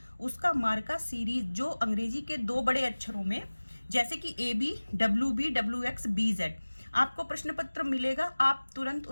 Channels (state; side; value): inverted; both; correlation -1.00